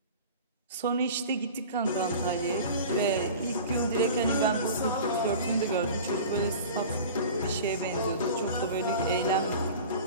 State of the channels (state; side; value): inverted; both; correlation -0.38